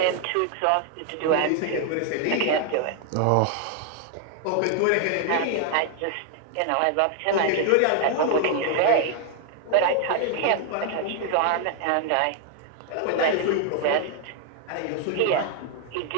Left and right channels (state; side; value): different; both; correlation 0.00